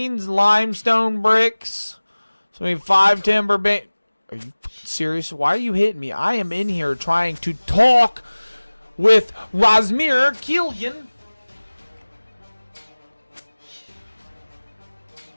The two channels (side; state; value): both; inverted; correlation -1.00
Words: limestone bricks. So we need 5 timber beams. Are you serious? Why are you hitting me? I am in here trying to talk with Razmir Killian.